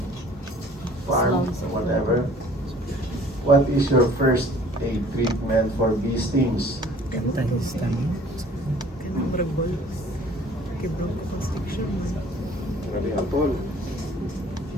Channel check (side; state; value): both; normal; correlation 0.52